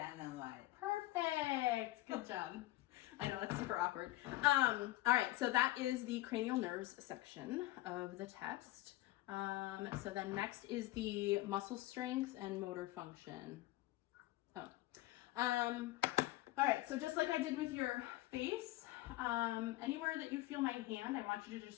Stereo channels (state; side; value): quieter; right; 17.5 dB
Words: Perfect. Good job. I know, that's super awkward. All right, so that is the cranial nerves section of the test. So then next is the muscle strength and motor function. Oh. All right, so just like I did with your face, anywhere that you feel my hand, I want you to